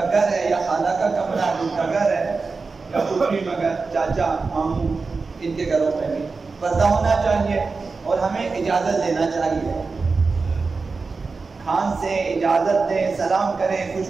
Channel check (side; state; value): left; quieter; 4.3 dB